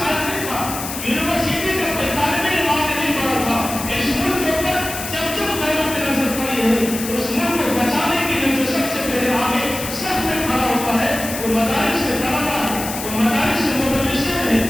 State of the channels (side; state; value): left; noise; hiss, 7 dB below the sound